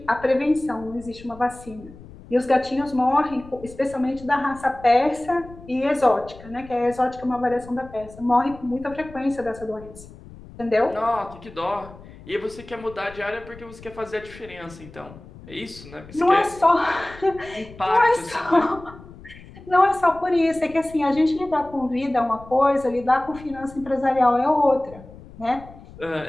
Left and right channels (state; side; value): noise; left; rumble, 19 dB below the sound